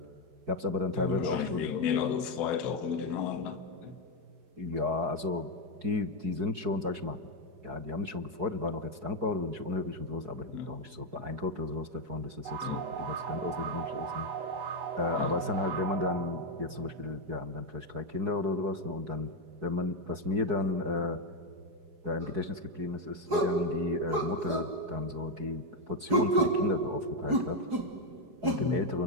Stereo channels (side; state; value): left; late; 4.7 ms